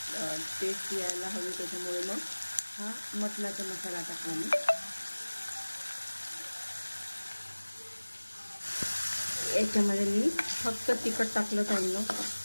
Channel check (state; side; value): inverted; both; correlation -1.00